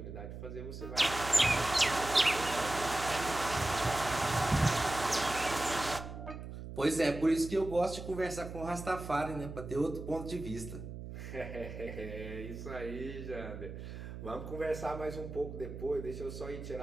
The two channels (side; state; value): right; noise; hum, 9 dB below the sound